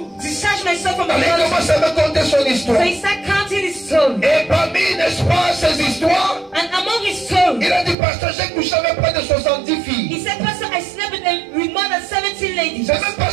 discharge myself from the Alors il body. commence à me conter son So histoire. he started counting his story. Et parmi, n'est-ce pas, ces histoires, And among his story, il a dit, pasteur, j'ai couché avec près de 70 filles. he said, Pastor, I slept with more than 17 ladies. C'est même pas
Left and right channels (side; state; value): left; drops out; at 8.0 s